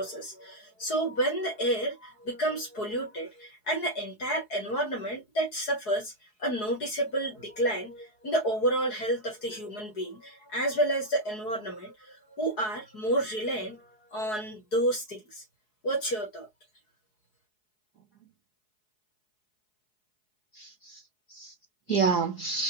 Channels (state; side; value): late; right; 4.7 ms